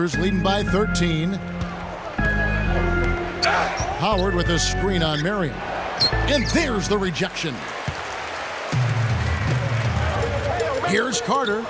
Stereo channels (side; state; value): both; identical; correlation 1.00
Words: leading by 13. Howard with a screen on Marion. And there's the rejection. Here's Carter.